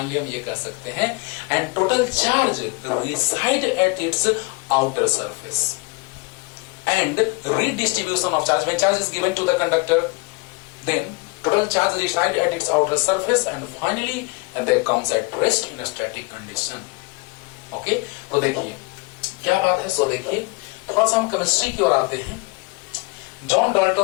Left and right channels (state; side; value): quieter; right; 27.9 dB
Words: हम ये कह सकते हैं and total charge reside at its outer surface and redistribution of charge when charge is given to the conductor, then total charge reside at its outer surface and finally that comes at rest in a static condition। Okay, तो देखिए क्या बात है। सो देखिए थोड़ा सा हम chemistry की ओर आते हैं। जॉन